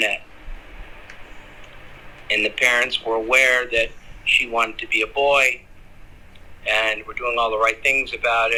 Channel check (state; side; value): identical; both; correlation 1.00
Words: And the parents were aware that she wanted to be a boy and were doing all the right things about